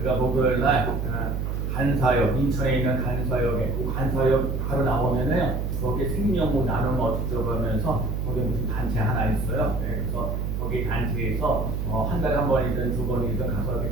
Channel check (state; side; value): noise; right; hum, 1 dB below the sound